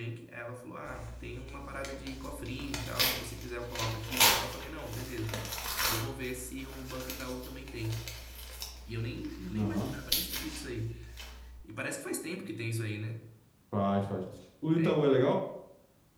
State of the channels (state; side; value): identical; both; correlation 1.00